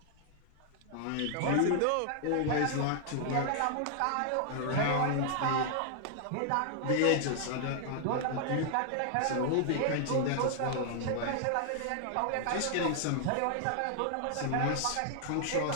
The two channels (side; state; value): both; different; correlation -0.01